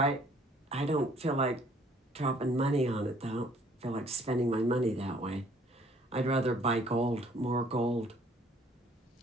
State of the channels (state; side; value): normal; both; correlation 0.59